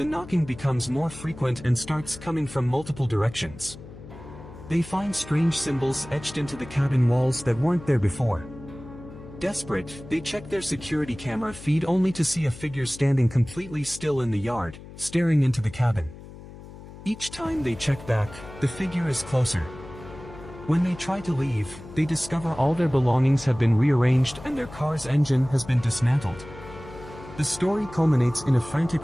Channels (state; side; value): noise; left; hum, 16 dB below the sound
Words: knocking becomes more frequent and starts coming from multiple directions. They find strange symbols etched into the cabin walls that weren't there before. Desperate, they check their security camera feed only to see a figure standing completely still in the yard, staring into the cabin. Each time they check back, the figure is closer. When they try to leave, they discover all their belongings have been rearranged and their car's engine has been dismantled. The story culminates in a